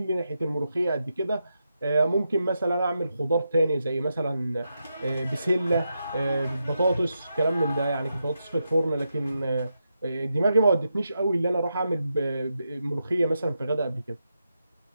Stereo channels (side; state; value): both; inverted; correlation -0.86